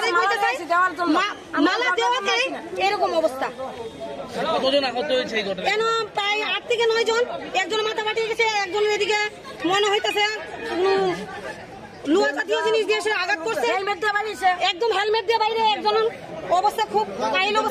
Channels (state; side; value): identical; both; correlation 1.00